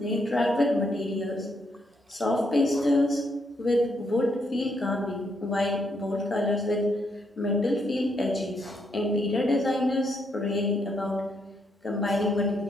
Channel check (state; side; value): normal; both; correlation 0.76